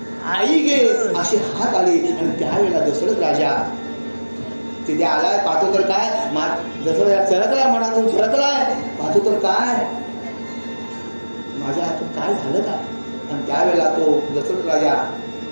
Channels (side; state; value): both; inverted; correlation -1.00